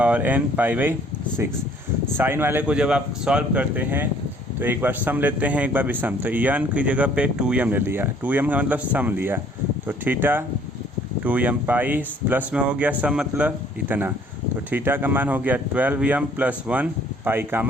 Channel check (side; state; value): both; normal; correlation 0.59